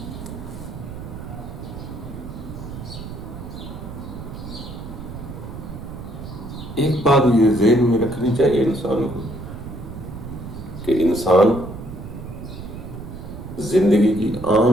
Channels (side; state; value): right; noise; rumble, 10 dB below the sound